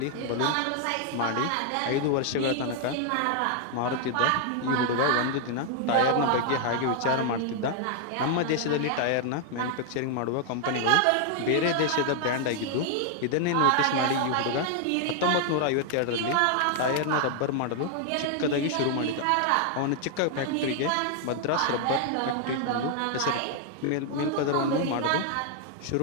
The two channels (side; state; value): both; different; correlation 0.00